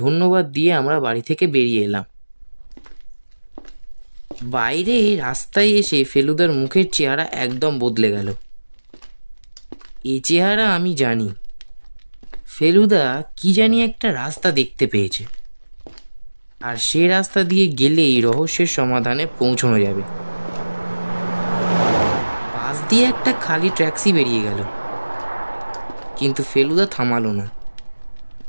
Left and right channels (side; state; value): both; inverted; correlation -1.00